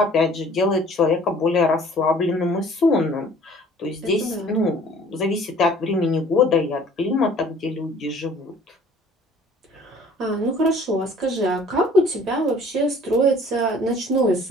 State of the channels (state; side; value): normal; both; correlation 0.52